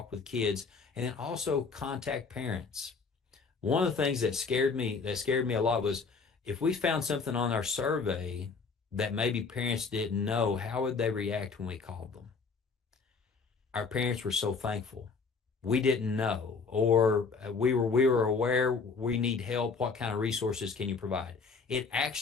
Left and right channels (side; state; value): right; quieter; 4.8 dB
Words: with kids and then also contact parents. One of the things that scared me a lot was if we found something on our survey that maybe parents didn't know, how would they react when we called them? Our parents were so thankful. We didn't know, or we were aware we need help. What kind of resources can you provide? It